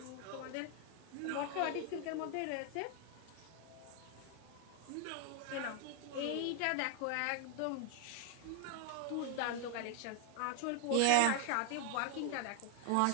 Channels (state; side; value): different; both; correlation 0.00